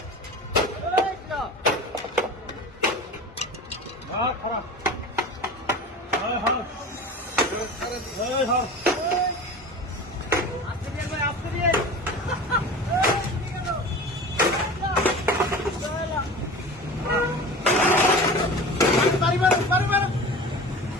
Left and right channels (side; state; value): both; normal; correlation 0.35